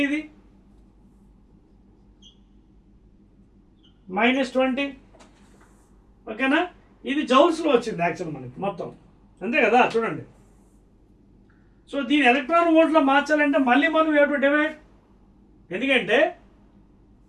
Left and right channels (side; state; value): both; identical; correlation 1.00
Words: ఇది -20, ఓకేనా. ఇది జౌల్స్లో వచ్చింది యాక్చువల్ మనకి మొత్తం, అంతే కదా. చూడండి, సో దీని ఎలక్ట్రాన్ వోల్ట్లో మార్చాలంటే మళ్ళీ మనం యూ హావ్ టు డివైడ్, ఎందుకంటే